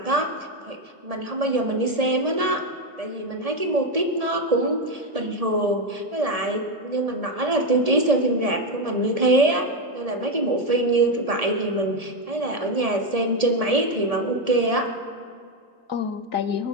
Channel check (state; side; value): late; left; 1.7 ms